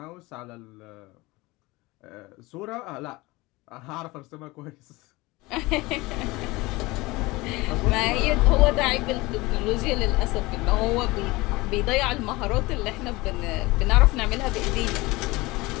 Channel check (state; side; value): quieter; right; 21.9 dB